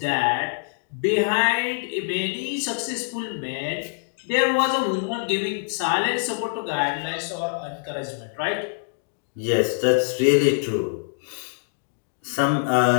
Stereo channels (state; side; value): silent; right; digital silence